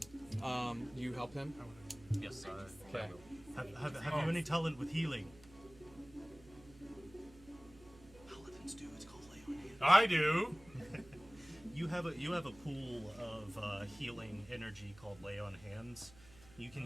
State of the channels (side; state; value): right; noise; hum, 22 dB below the sound